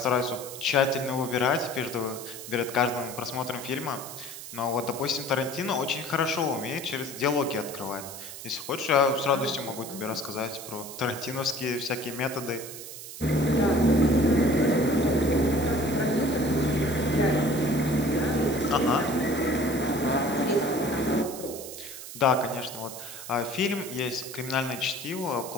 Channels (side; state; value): right; noise; hiss, 11 dB below the sound